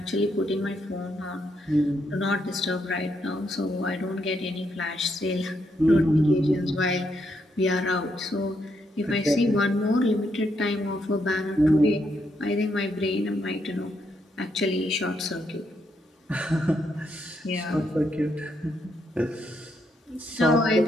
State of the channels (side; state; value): both; normal; correlation 0.78